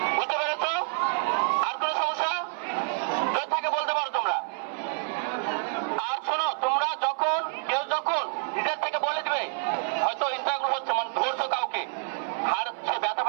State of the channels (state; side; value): silent; left; 58 dB below the other